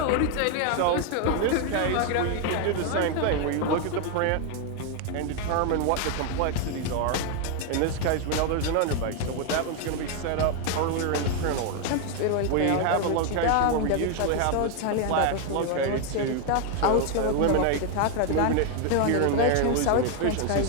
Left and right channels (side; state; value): both; different; correlation 0.01